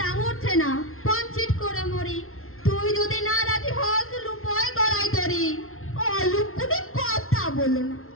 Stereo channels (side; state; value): right; late; 0.62 ms